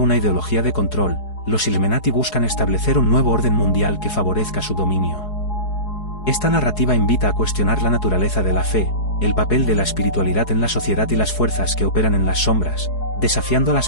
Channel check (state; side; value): late; right; 4.7 ms